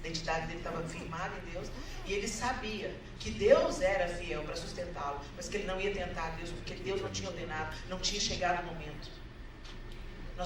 identidade dele estava firmada em Deus. E ele sabia que Deus era fiel para sustentá-lo, mas que ele não ia tentar Deus, porque Deus não tinha ordenado, não tinha chegado o momento.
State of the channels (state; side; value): identical; both; correlation 1.00